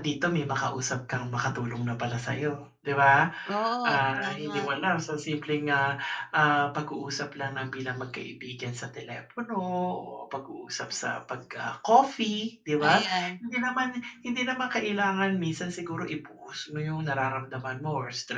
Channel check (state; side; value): identical; both; correlation 1.00